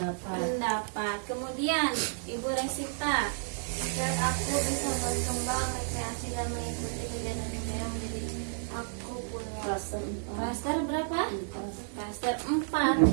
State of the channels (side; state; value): left; silent; digital silence